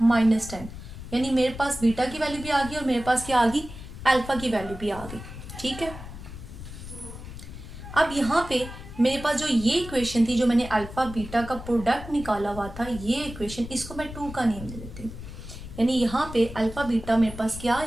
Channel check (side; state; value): left; noise; rumble, 12 dB below the sound